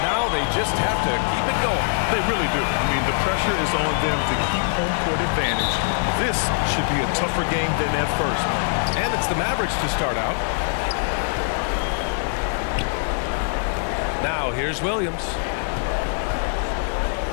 Now they just have to keep it going. They really do. I mean, the pressure is on them to keep home court advantage. This should be a tougher game than that first one. And it's the Mavericks to start out. Now here's Williams.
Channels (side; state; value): right; silent; 56 dB below the other